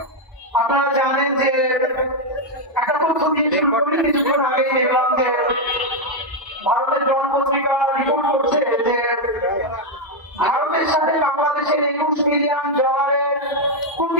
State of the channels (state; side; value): normal; both; correlation 0.02